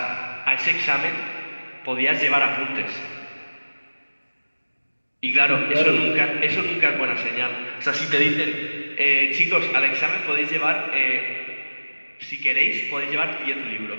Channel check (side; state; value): both; inverted; correlation -1.00